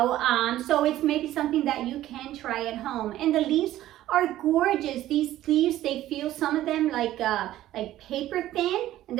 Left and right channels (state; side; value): quieter; left; 14.0 dB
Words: So it's maybe something that you can try at home. And the leaves are gorgeous. These leaves, they feel, some of them like paper thin, and